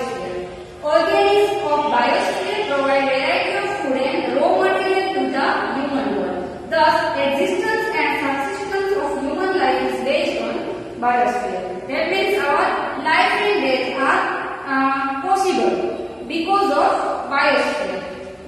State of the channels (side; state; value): both; identical; correlation 1.00